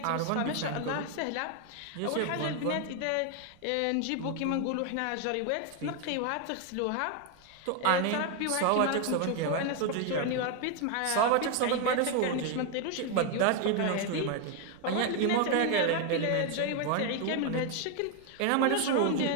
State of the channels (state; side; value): different; both; correlation 0.01